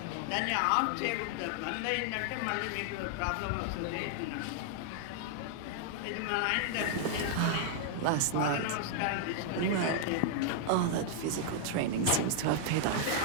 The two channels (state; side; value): different; both; correlation -0.01